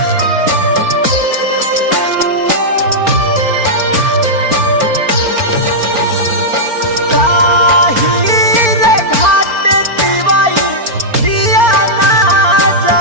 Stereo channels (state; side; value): late; left; 4.4 ms